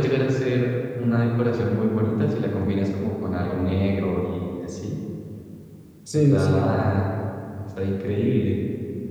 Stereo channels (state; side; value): identical; both; correlation 1.00